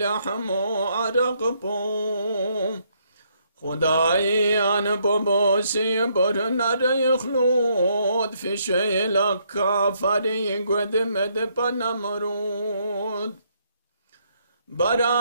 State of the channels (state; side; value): inverted; both; correlation -0.72